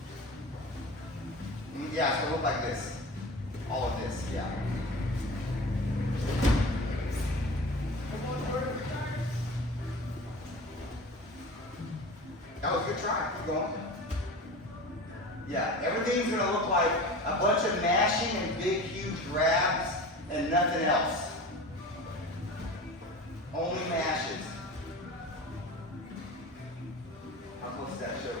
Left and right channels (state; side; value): normal; both; correlation 0.35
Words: you. Yeah, it's gonna look like this. All of this, yeah. That was a good try. Keep going. Yeah, everything's gonna look like a bunch of mashing and big, huge grabs and nothing else. Only mashes. How close is that